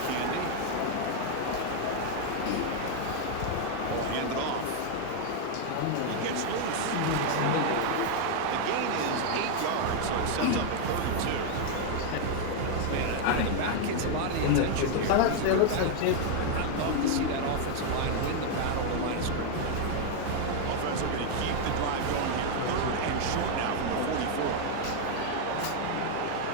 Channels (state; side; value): different; both; correlation 0.00